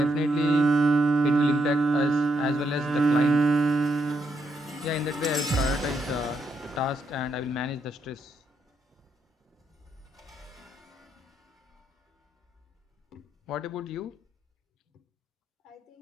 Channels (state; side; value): normal; both; correlation 0.78